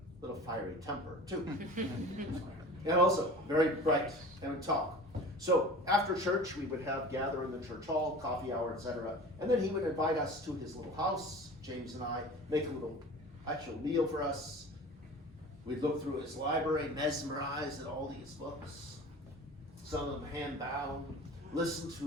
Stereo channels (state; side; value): normal; both; correlation 0.39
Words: little fiery temper too. And also very bright and would talk. So after church, we would gather in the church hall, coffee hour, etc. And then he would invite us to his little house, James and I, make a little actual meal for us. We'd look through his library, mesmerized at all these books, some of them hand-bound, listen